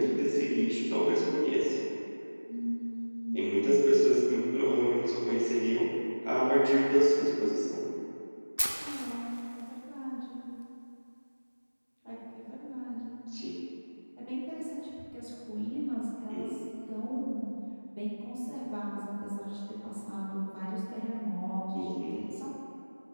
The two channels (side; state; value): both; inverted; correlation -1.00